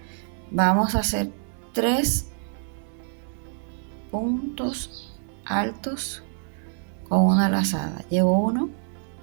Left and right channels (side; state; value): left; silent; 61 dB below the other